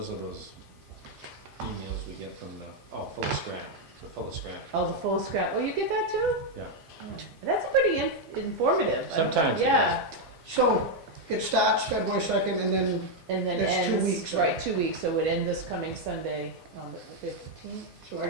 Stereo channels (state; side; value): normal; both; correlation 0.01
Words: are those emails we get from full of scrap. They're full of scrap. Oh, the full scrap. Oh, you get that too? Yeah. That's pretty informative. Sometimes it Yeah, So it starts February 2nd and then, and then That's 2 ends, weeks, right, 2 weeks, so it would end this coming Sunday on the 15th. so